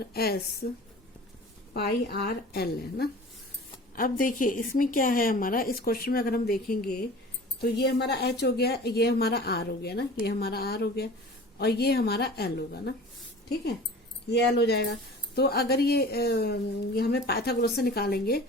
s पाई r l है ना। अब देखिए इसमें क्या है हमारा, इस क्वेश्चन में अगर हम देखेंगे तो ये हमारा h हो गया, ये हमारा r हो गया ना, ये हमारा r हो गया, और ये हमारा l होगा ना, ठीक है, ये l हो जाएगा। तो अगर ये हमें पाइथागोरस से निकालेंगे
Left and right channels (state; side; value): normal; both; correlation 0.41